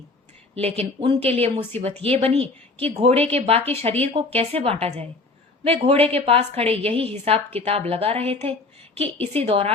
लेकिन उनके लिए मुसीबत ये बनी कि घोड़े के बाकी शरीर को कैसे बांटा जाए। वे घोड़े के पास खड़े यही हिसाब किताब लगा रहे थे कि इसी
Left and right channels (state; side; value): quieter; right; 3.4 dB